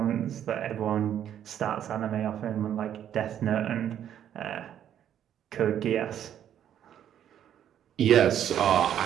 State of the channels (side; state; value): left; quieter; 10.1 dB